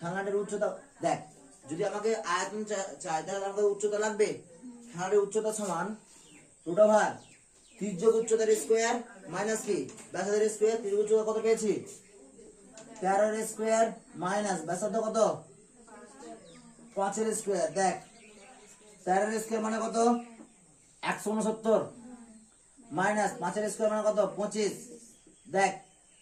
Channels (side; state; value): both; identical; correlation 1.00